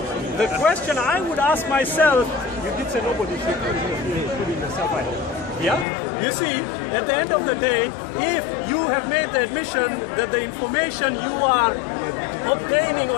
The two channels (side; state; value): right; drops out; at 5.9 s